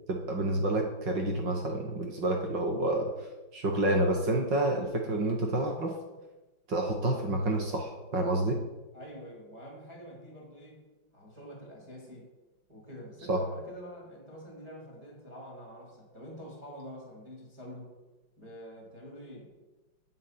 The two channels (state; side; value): late; left; 5.5 ms